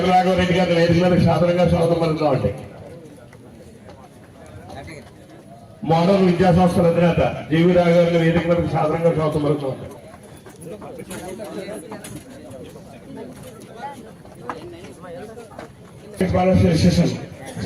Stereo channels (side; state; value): both; identical; correlation 1.00